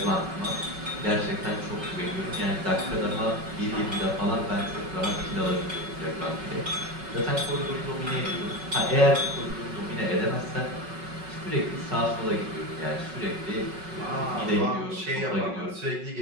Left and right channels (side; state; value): left; late; 5.4 ms